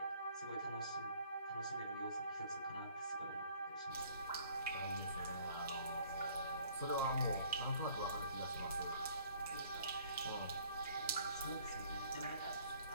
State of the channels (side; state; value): both; inverted; correlation -0.57